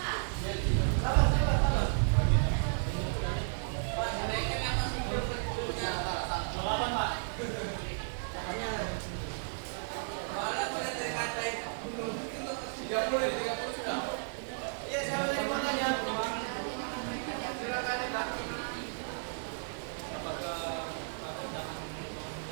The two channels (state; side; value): silent; left; digital silence